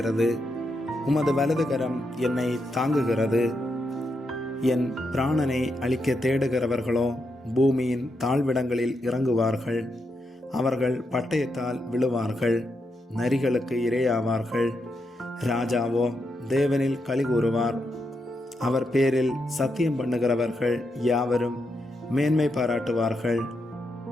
உமது வலதுகரம் என்னை தாங்குகிறது. என் பிராணனை அழிக்க தேடுகிறவர்களோ பூமியின் தாழ்விடங்களில் இறங்குவார்கள். அவர்கள் பட்டயத்தால் விழுவார்கள், நரிகளுக்கு இரையாவார்கள். ராஜாவோ தேவனில் களி கூறுவார். அவர் பேரில் சத்தியம் பண்ணுகிறவர்கள் யாவரும் மேன்மை பாராட்டுவார்கள்.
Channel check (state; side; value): normal; both; correlation 0.83